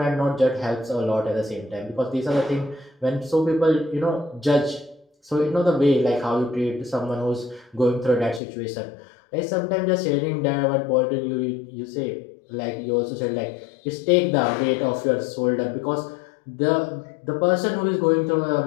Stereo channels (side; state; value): right; drops out; at 8.4 s